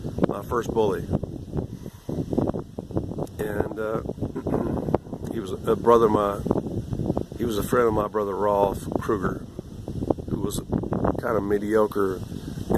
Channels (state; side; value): identical; both; correlation 1.00